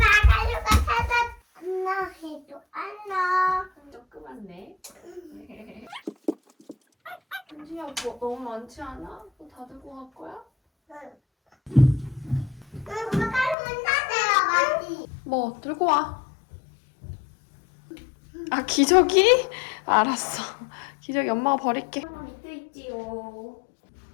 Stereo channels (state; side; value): drops out; right; at 13.6 s